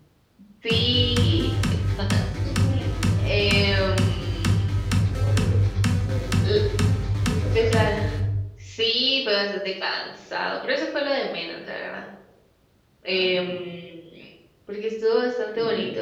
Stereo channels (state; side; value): identical; both; correlation 1.00